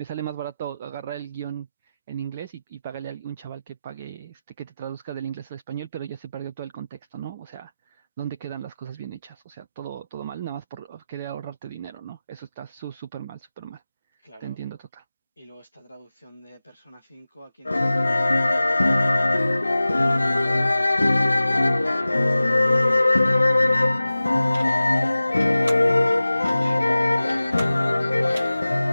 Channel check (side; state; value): both; inverted; correlation -0.96